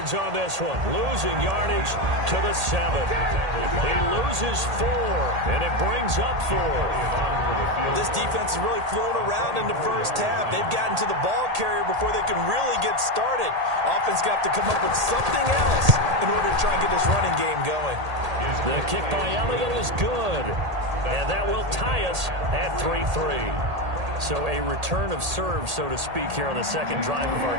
on this one, losing yardage to the 7. He loses 4, and it brings up 4. This defense is really flown around in the first half. They've gotten to the ball carrier before they can really get started. Offense got to come up with something else in order to try and get this running game going. The kick by Elliott is good, and that will tie us at 3-3. So a return of serve, so to speak, here on the second drive of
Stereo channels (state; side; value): late; left; 1.8 ms